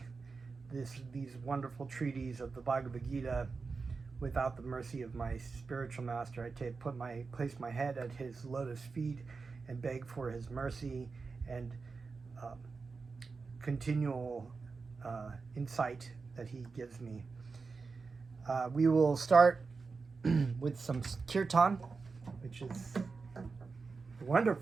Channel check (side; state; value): left; quieter; 4.5 dB